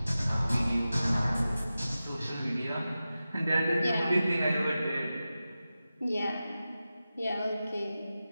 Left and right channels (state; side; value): inverted; both; correlation -0.94